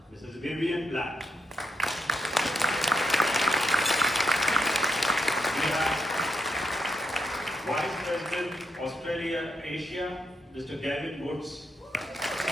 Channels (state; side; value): normal; both; correlation 0.79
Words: Mrs. Vivian Black. We have Vice President Australia Asia, Mr. Gavin Woods.